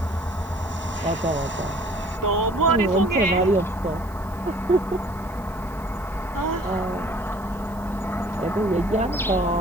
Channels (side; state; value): right; noise; hiss, 25 dB below the sound